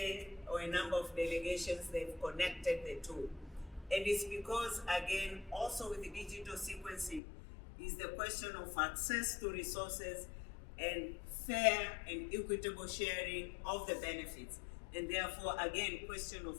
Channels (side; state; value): right; drops out; at 7.2 s